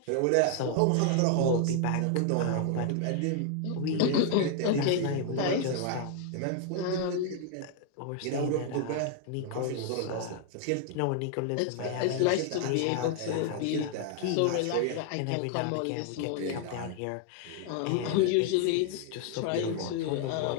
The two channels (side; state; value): both; different; correlation 0.00